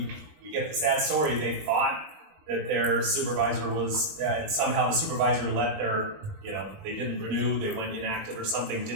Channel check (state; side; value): late; left; 20 ms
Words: get the sad story, they thought that their supervisor was, and somehow the supervisor let their, they didn't renew, they went inactive or something,